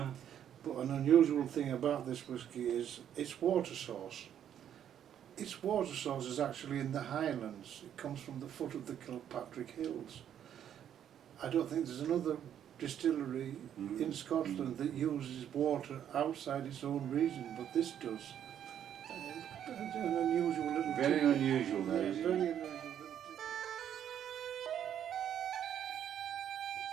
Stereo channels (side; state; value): left; quieter; 9.8 dB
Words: an unusual thing about this whisky is its water source. Its water source is actually in the Highlands. It comes from the foot of the Kilpatrick Hills. I don't think there's another distillery in Scotland that uses water outside its own region, but this does. It's an unusual little Very thing. unusual, that Yeah, is. very unusual little thing.